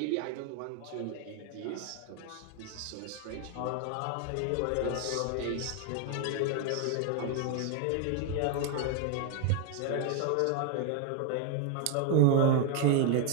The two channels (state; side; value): different; both; correlation 0.01